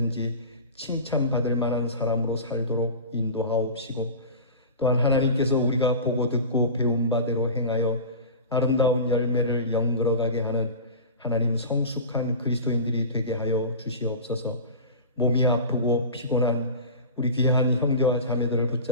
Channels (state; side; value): inverted; both; correlation -0.32